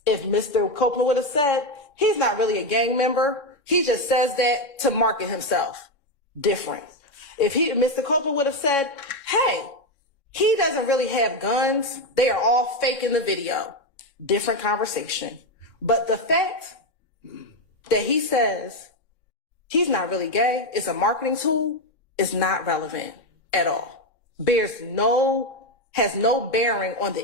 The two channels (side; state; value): right; late; 3.7 ms